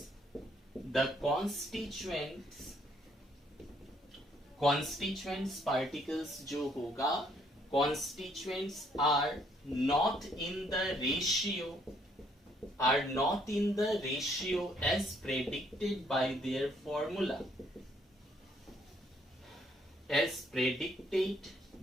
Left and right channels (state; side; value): normal; both; correlation 0.68